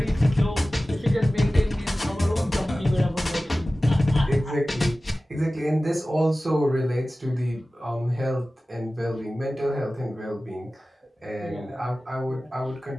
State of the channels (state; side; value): normal; both; correlation 0.96